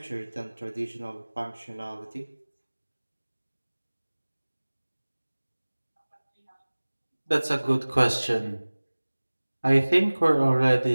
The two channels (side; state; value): both; inverted; correlation -1.00